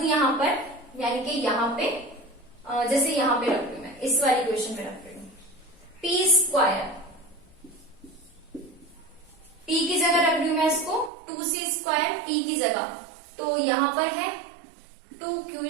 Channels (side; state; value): left; drops out; at 11.1 s